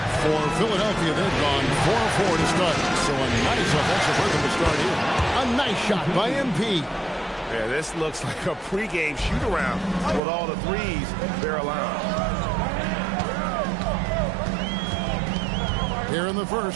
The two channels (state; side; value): drops out; left; at 10.2 s